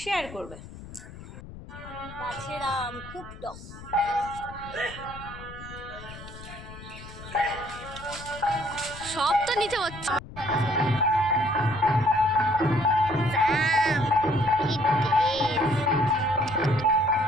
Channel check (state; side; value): noise; left; rumble, 15 dB below the sound